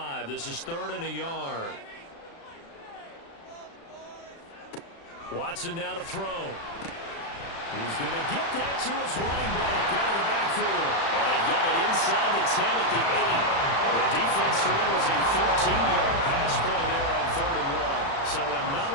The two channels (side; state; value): right; late; 36 ms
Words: This is 3rd and a yard. Watson now to throw. He's going to get that to his running back out of the backfield. And they've got it inside the 10 at the 8. The defense surrenders a 13-yard pass play there on 3rd and 1. So